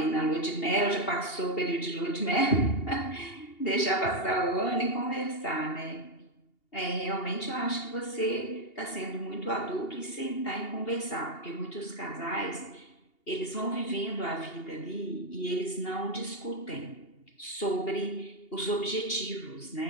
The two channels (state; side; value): late; right; 2.8 ms